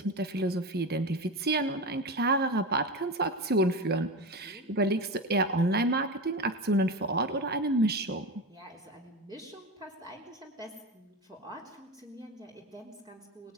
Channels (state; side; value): normal; both; correlation 0.22